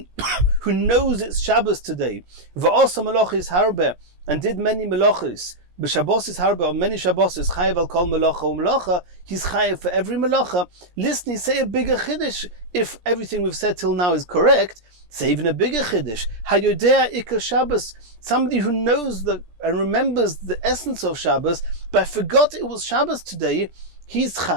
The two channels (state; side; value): late; left; 17 ms